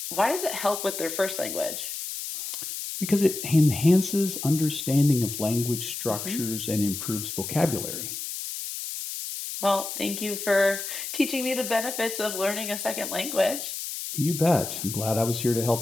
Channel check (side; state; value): left; noise; hiss, 6 dB below the sound